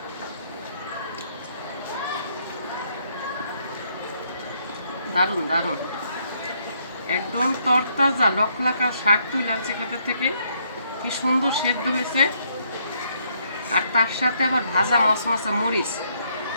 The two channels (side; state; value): both; inverted; correlation -0.71